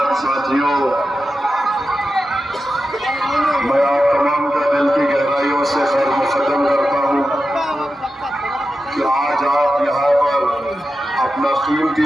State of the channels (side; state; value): both; normal; correlation 0.91